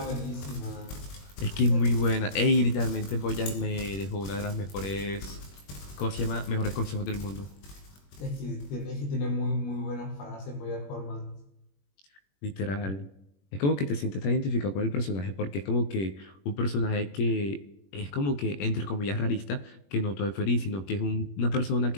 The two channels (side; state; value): right; late; 21 ms